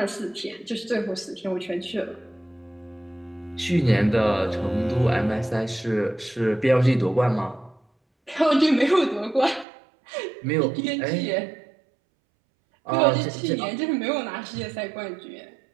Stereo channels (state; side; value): drops out; left; at 9.7 s